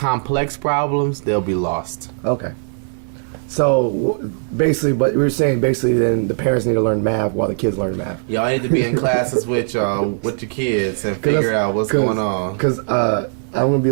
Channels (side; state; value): left; silent; digital silence